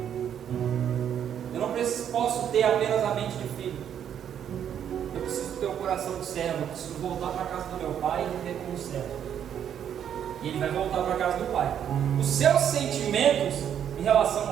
eu não posso ter apenas a mente de filho, eu preciso ter o coração de servo, eu preciso voltar para a casa do meu pai e viver como servo. E ele vai voltar para a casa do pai. Os seus sentimentos em relação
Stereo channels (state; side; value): quieter; left; 9.2 dB